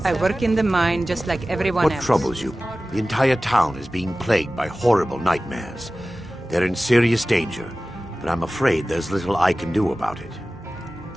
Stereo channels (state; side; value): normal; both; correlation 0.96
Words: I work in the mine just like everyone What else. troubles you? The entire town is being plagued by horrible nightmares. They're in serious danger, but I'm afraid there's little I can do about it.